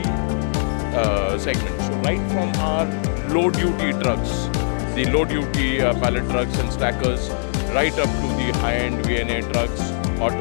segment. So right from our low-duty trucks, the low-duty pallet trucks and stackers, right up to the high-end VNA trucks,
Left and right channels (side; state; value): right; silent; digital silence